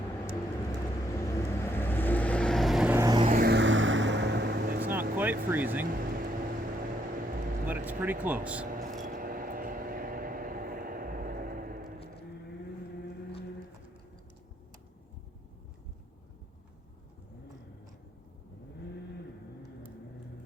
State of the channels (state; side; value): normal; both; correlation 0.73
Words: It's not quite freezing, but it's pretty close.